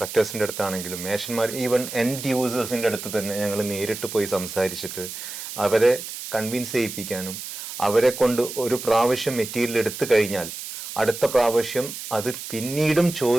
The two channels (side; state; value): right; noise; hiss, 9 dB below the sound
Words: അടുത്താണെങ്കിലും മേഷന്മാർ, ഈവൻ എൻഡ് യൂസേഴ്സിൻ്റെ അടുത്ത് തന്നെ ഞങ്ങൾ നേരിട്ട് പോയി സംസാരിച്ചിട്ട് അവരെ കൺവിൻസ് ചെയ്യിപ്പിക്കാനും, അവരെ കൊണ്ട് ഒരു പ്രാവശ്യം മെറ്റീരിയൽ എടുത്തു കഴിഞ്ഞാൽ അടുത്ത പ്രാവശ്യം അത് പിന്നീടും